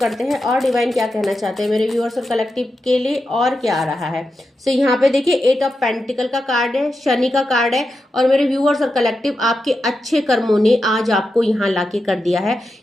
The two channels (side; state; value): both; normal; correlation 0.89